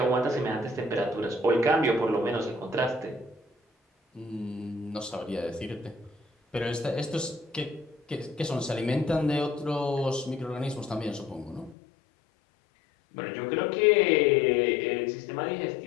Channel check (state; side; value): drops out; right; at 11.8 s